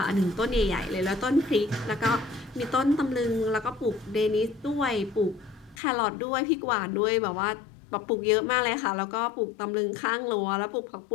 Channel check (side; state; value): right; drops out; at 5.8 s